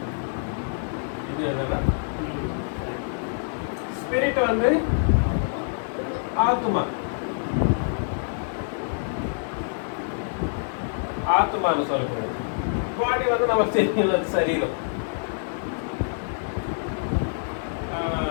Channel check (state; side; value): silent; right; digital silence